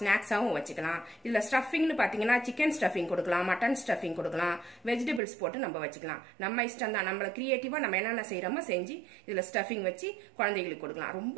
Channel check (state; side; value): drops out; left; at 5.2 s